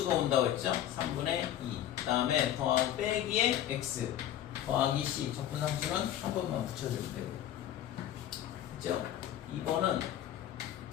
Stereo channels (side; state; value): right; quieter; 11.6 dB